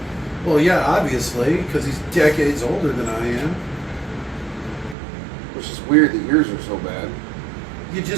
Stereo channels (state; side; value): drops out; left; at 5.0 s